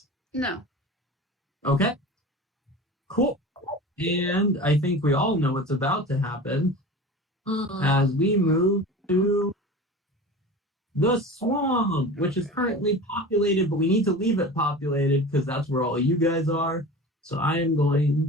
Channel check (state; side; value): normal; both; correlation 0.34